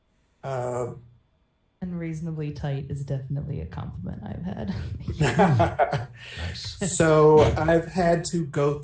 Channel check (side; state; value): both; identical; correlation 1.00